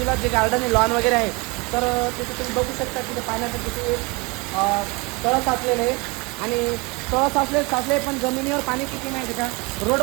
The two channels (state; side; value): quieter; left; 27.5 dB